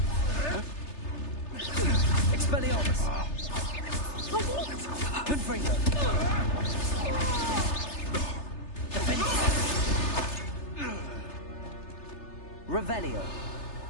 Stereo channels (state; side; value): late; right; 3.3 ms